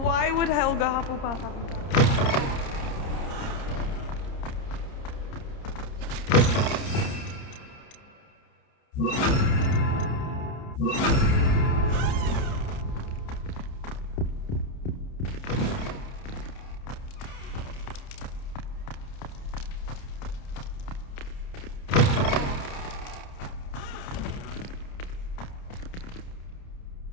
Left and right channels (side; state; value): right; late; 30 ms